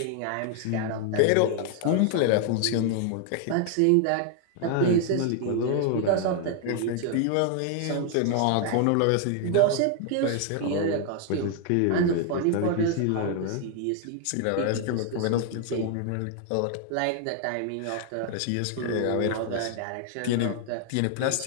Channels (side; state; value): both; different; correlation 0.00